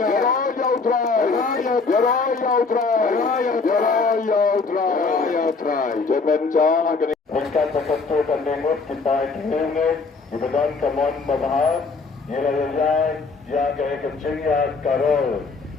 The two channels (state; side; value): quieter; right; 4.3 dB